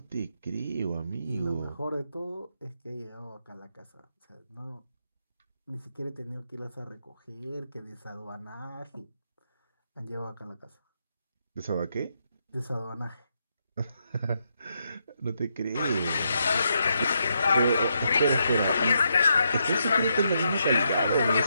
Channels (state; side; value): inverted; both; correlation -0.80